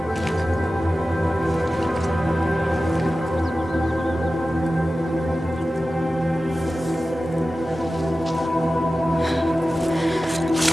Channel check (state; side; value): normal; both; correlation 0.95